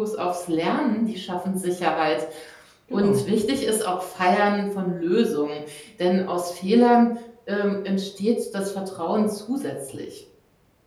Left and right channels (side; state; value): both; identical; correlation 1.00